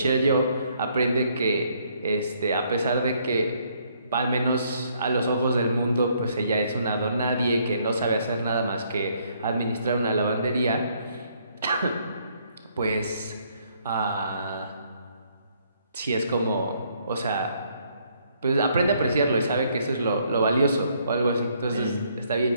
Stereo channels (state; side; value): inverted; both; correlation -0.68